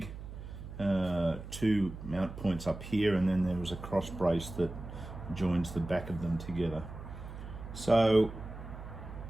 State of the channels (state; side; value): noise; right; hum, 11 dB below the sound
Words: 2 mount points up here, and then there is a cross brace that joins the back of them together. So